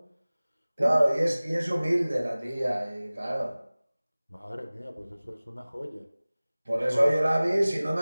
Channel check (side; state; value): both; inverted; correlation -0.99